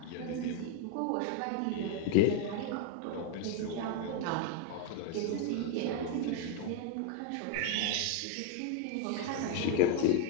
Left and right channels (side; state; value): both; different; correlation 0.00